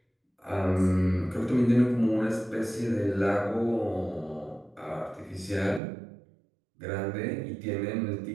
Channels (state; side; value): drops out; left; at 5.8 s